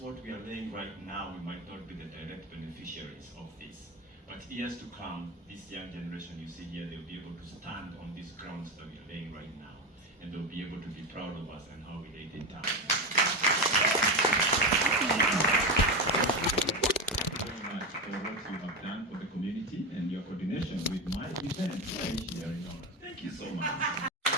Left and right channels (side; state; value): both; normal; correlation 0.17